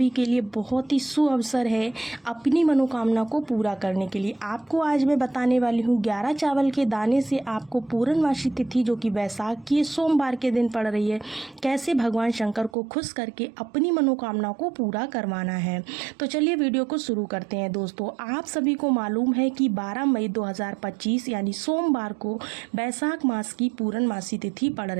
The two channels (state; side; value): drops out; left; at 12.7 s